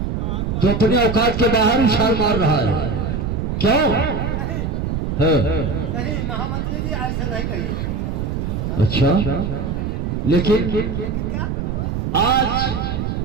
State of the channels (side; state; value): right; noise; rumble, 2 dB below the sound